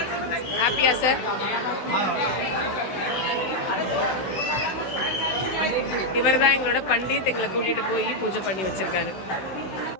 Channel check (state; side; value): late; right; 16 ms